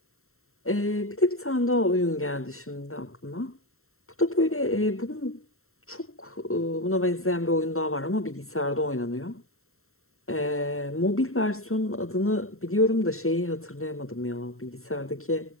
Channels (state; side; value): late; right; 0.62 ms